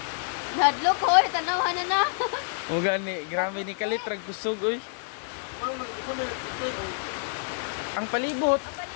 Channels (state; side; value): silent; right; 55 dB below the other